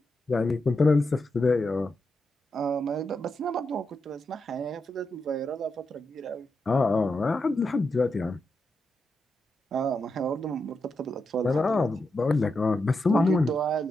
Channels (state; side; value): normal; both; correlation 0.86